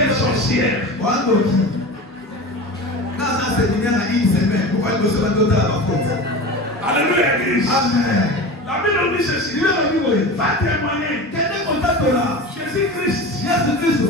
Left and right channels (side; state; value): both; normal; correlation 0.31